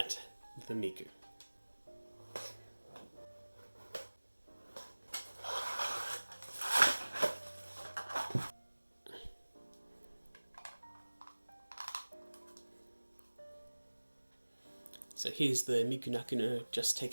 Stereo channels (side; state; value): both; inverted; correlation -1.00